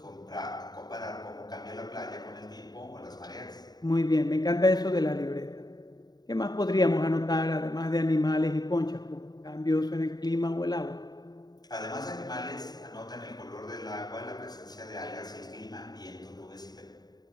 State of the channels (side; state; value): right; late; 0.19 ms